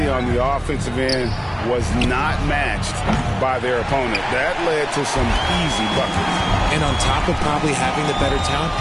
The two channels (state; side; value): identical; both; correlation 1.00